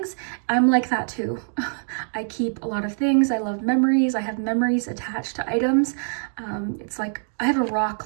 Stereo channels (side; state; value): left; silent; digital silence